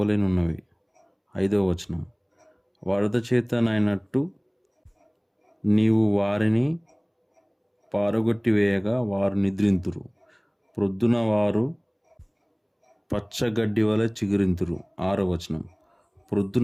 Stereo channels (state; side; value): identical; both; correlation 1.00